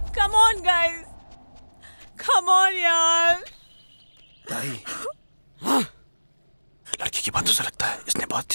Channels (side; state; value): both; inverted; correlation -1.00